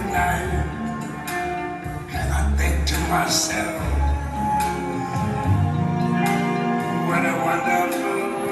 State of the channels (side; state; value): both; identical; correlation 1.00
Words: and I think to myself, what a wonderful